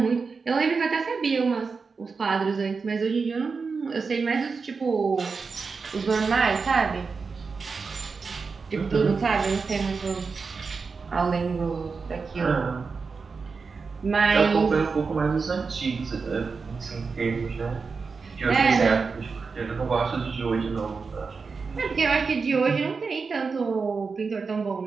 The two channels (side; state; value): left; quieter; 4.8 dB